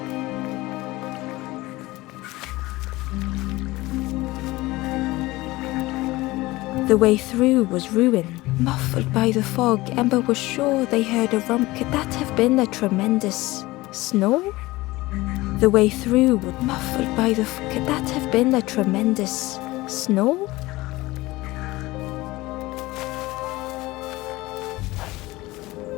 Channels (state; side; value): quieter; right; 19.7 dB